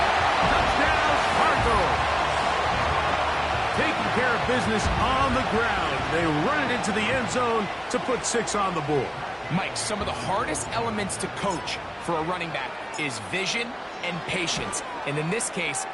Touchdown, Cardinals. Taking care of business on the ground. They run it into the end zone to put 6 on the board. Mike, some of the hardest elements to coach for a running back is vision and patience. And in this case,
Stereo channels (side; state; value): both; identical; correlation 1.00